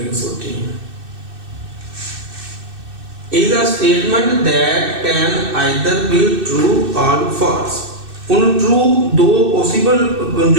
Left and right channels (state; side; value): late; left; 2.6 ms